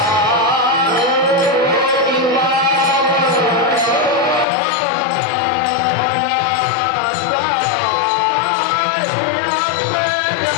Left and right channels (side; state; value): right; drops out; at 4.5 s